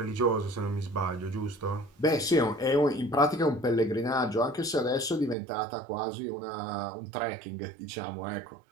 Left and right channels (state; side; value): drops out; left; at 5.4 s